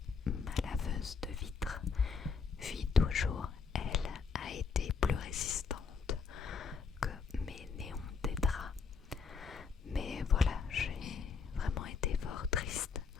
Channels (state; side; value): quieter; right; 5.4 dB